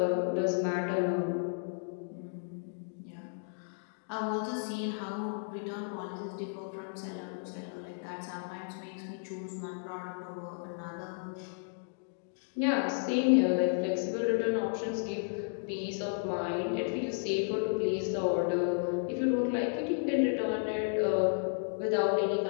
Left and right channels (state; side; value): silent; right; digital silence